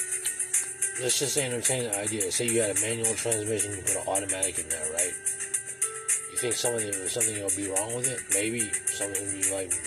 Let's just say entertain the idea. Say you had a manual transmission, you put an automatic in there, right? You think something will be wrong with it? Maybe something will be like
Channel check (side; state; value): both; identical; correlation 1.00